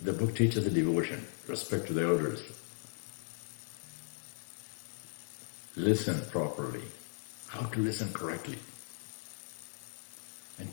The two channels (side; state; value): right; silent; 53 dB below the other